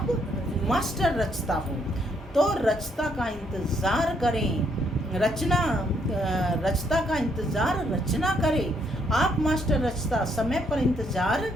मास्टर रचता हो, तो रचता का इंतज़ार करें। रचता का इंतज़ार रचना करे। आप मास्टर रचता, समय पर इंतज़ार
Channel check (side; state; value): both; normal; correlation 0.72